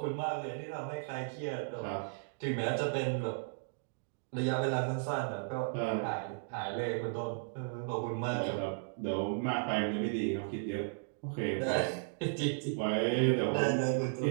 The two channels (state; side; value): silent; left; digital silence